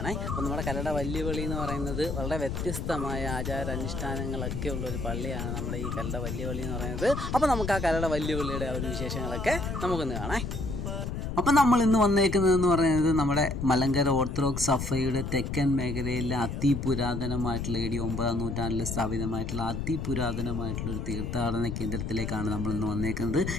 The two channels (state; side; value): noise; left; rumble, 4 dB below the sound